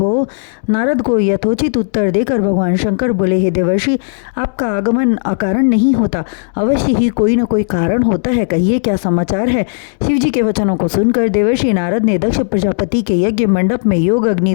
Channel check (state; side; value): silent; right; digital silence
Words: नारद को यथोचित उत्तर देकर भगवान शंकर बोले, हे देवर्षि, आपका आगमन अकारण नहीं होता, अवश्य ही कोई न कोई कारण होता है, कहिए क्या समाचार है। शिवजी के वचनों को सुनकर देवर्षि नारद ने दक्ष प्रजापति के यज्ञ मंडप में योग अग्नि